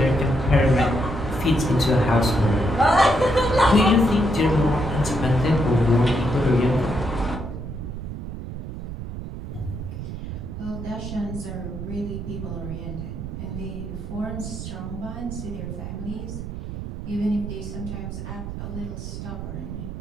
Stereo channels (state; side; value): noise; right; rumble, 8 dB below the sound